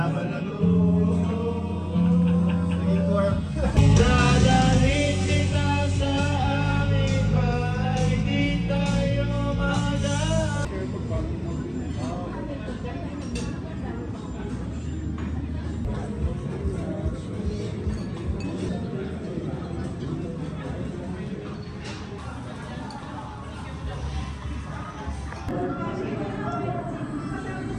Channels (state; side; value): identical; both; correlation 1.00